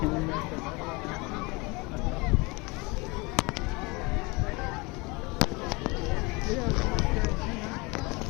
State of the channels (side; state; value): right; quieter; 26.4 dB